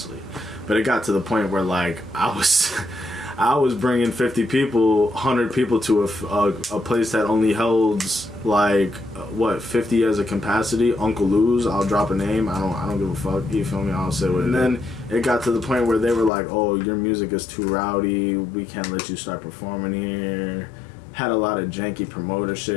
But it got to the point where, like, I was bringing 50 people, 100 people to a place that only holds, like, 50 as a capacity. Uncle Lou's, I'll drop a name. I don't give a fuck. You feel me? I'll say what it is. And then it got to the point where they were like, "Oh, your music is too rowdy. We can't let you start performing here." had a lot of janky promoter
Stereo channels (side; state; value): right; drops out; at 16.3 s